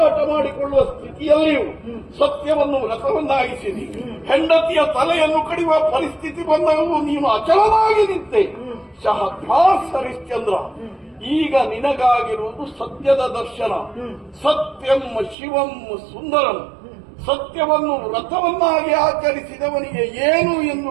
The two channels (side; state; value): left; drops out; at 15.4 s